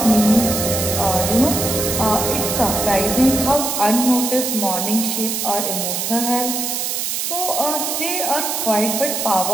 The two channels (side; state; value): right; noise; hiss, 2 dB below the sound